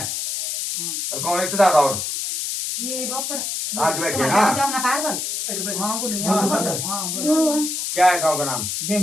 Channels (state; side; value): noise; left; hiss, 3 dB below the sound